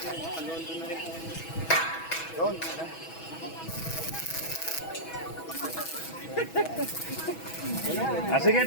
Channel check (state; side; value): late; right; 6.2 ms